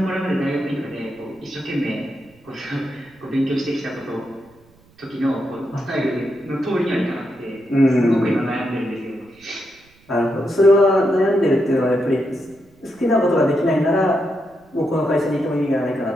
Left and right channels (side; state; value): right; noise; rumble, 30 dB below the sound